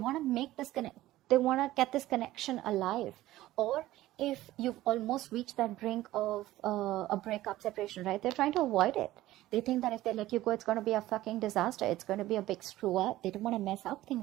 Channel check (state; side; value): quieter; left; 15.8 dB